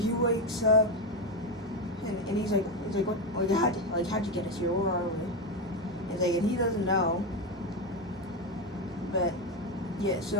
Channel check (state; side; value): normal; both; correlation 0.12